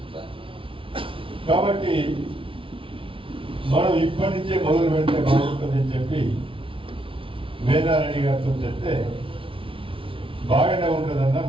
కాబట్టి మనం ఇప్పటి నుంచే మొదలు పెడితే బాగుంటుందని చెప్పి వీరారెడ్డి గారితో చెప్తే బాగానే ఉంటుందన్నా,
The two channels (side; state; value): left; late; 0.25 ms